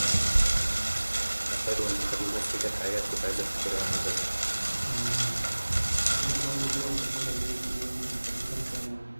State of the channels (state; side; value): inverted; both; correlation -1.00